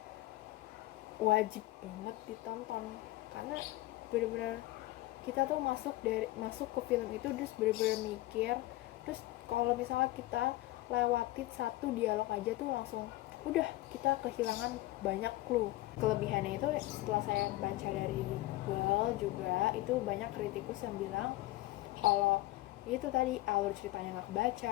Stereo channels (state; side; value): quieter; right; 17.9 dB